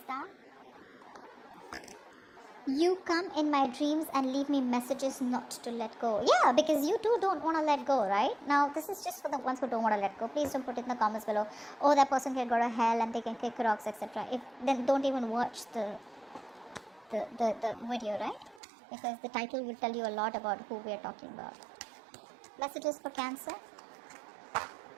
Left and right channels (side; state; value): left; drops out; at 18.6 s